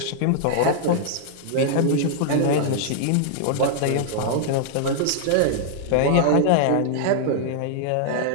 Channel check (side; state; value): both; different; correlation -0.01